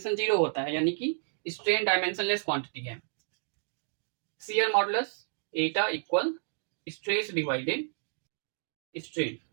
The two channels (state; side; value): silent; left; digital silence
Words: 0 होता है, यानी कि स्ट्रेन डायमेंशनलेस क्वांटिटी है। शियर मॉडुलस एटा equal stress divided strain.